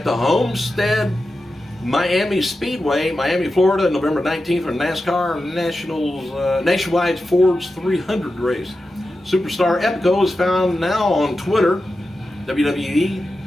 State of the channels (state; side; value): normal; both; correlation 0.91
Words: the Homestead Miami Speedway, Miami, Florida, November 19th for NASCAR Nationwide Fords 300 race. Superstar Epico is found now on Twitter, WWE